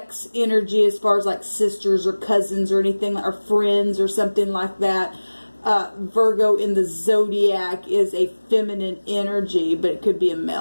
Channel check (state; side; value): inverted; both; correlation -1.00